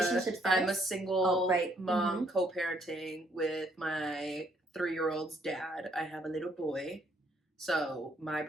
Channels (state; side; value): normal; both; correlation 0.68